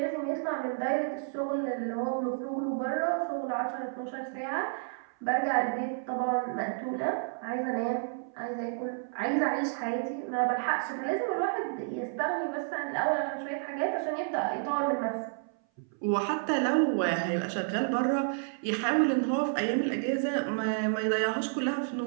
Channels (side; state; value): left; silent; 57 dB below the other